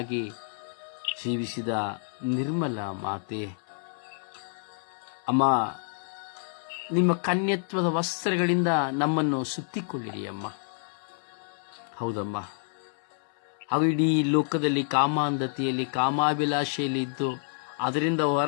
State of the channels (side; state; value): right; silent; 59 dB below the other